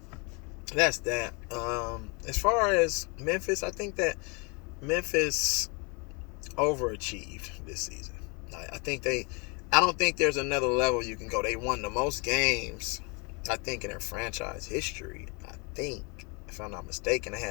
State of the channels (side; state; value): right; quieter; 31.9 dB